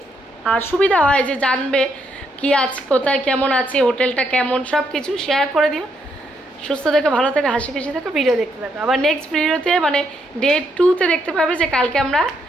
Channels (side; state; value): both; normal; correlation 0.76